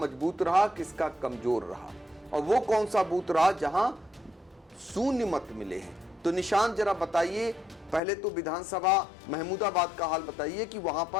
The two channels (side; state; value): right; drops out; at 8.0 s